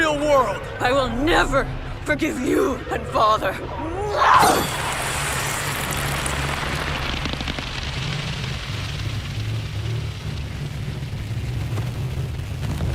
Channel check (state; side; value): identical; both; correlation 1.00